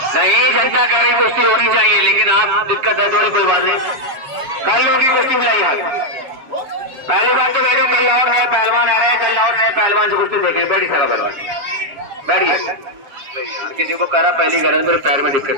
नहीं, जनता कह रही कुश्ती होनी चाहिए, लेकिन आप दिक्कत है थोड़ी, कोई बात नहीं, कल होगी कुश्ती बुलाइए। पहली बात तो मेरे कल और नए पहलवान आ रहे हैं, कल और नए पहलवान से कुश्ती देखिए, बैठी सारा पहलवान बैठिए। किसी को करा पहली गरज, मेरे पैर में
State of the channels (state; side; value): late; left; 7.3 ms